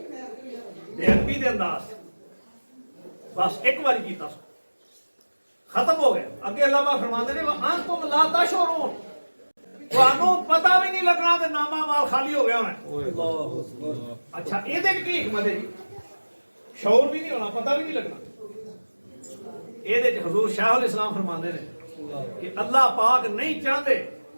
बेअदबी दे अंदाज बस एक बारी कीता खत्म हो गया। अगे अल्लाह पाक फरमांदे ने अंतुम ला तशउरून, तुहानू पता भी नहीं लगना ते नामा माल खाली हो गया होना। अच्छा ਇਹਦੇ ਕੀ हिकमत है जी, शौर भी नहीं होना, पता भी नहीं लगना। ਇਹਦੇ ਚ हजूर शाहुल इस्लाम फरमांदे ने कि अल्लाह पाक नहीं चाहते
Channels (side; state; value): both; inverted; correlation -1.00